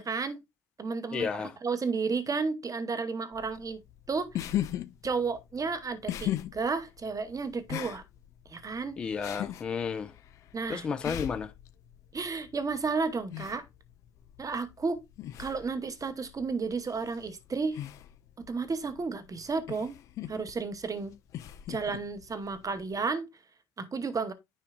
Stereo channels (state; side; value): normal; both; correlation 0.62